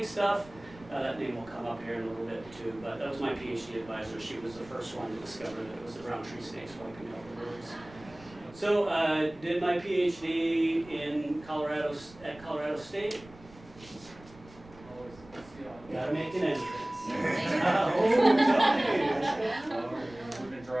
stuff, that name will come up here in a little bit too. But that was my PhD advisor. She was the first one to discover that it was the brown tree snakes wiping out the birds. So I did my PhD in Colorado State. Gotta make an entrance. We've been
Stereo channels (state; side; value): noise; right; rumble, 22 dB below the sound